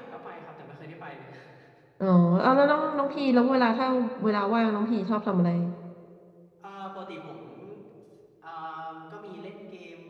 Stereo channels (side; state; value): both; identical; correlation 1.00